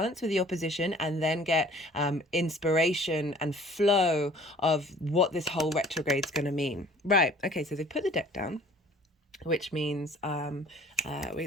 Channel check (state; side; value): normal; both; correlation 0.51